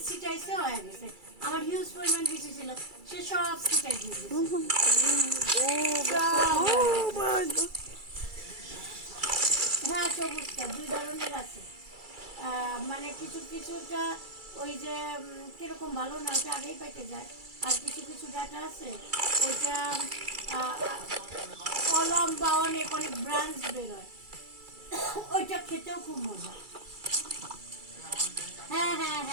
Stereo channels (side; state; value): left; late; 2.3 ms